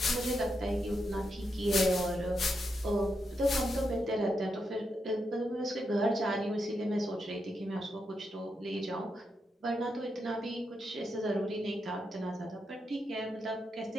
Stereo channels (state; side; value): normal; both; correlation 0.83